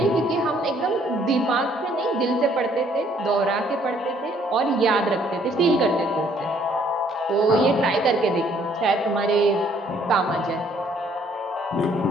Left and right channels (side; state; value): both; normal; correlation 0.63